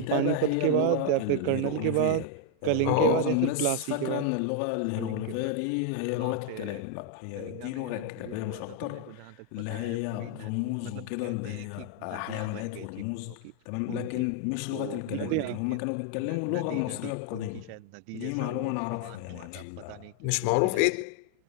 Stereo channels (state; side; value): different; both; correlation 0.00